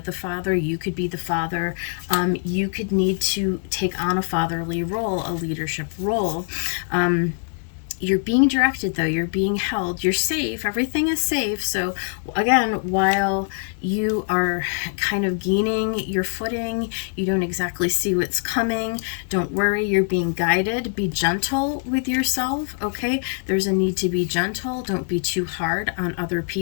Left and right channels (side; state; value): right; silent; 63 dB below the other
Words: the father, you could be the father. You could need to take on a fatherly role, a leadership role. You're being directed, though. You're being held. You're safe. Everything is safe. So again, while you are kind of gaining your footing, you don't exactly see what's coming. Don't worry. You're being guided. Be gentle with yourself, okay? There's a need to be gentle. Don't be too hard on other